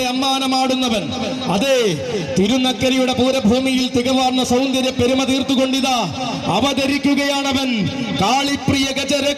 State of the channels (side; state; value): both; identical; correlation 1.00